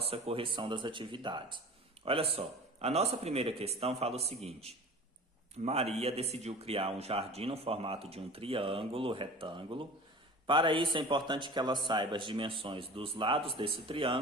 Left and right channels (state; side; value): normal; both; correlation 0.39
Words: correção das atividades. Olha só. A nossa primeira questão fala o seguinte: Maria decidiu criar um jardim no formato de um triângulo retângulo. Para isso é importante que ela saiba as dimensões dos lados desse